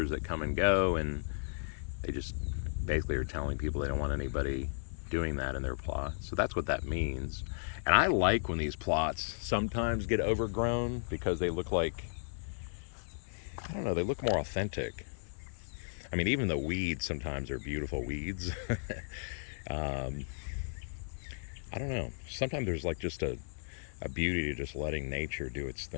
that come and go, and they just basically are telling people they don't want anybody doing that in their plot. So that's what that means. And I like when these plots sometimes get overgrown because they look like, they look more authentic. I mean, even the weeds sometimes are beautiful weeds. I don't know. Sometimes there's like just a beauty to just letting nature do its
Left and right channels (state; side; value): silent; right; digital silence